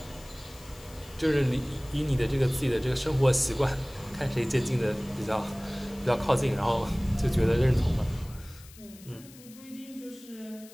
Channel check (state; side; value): noise; left; hiss, 21 dB below the sound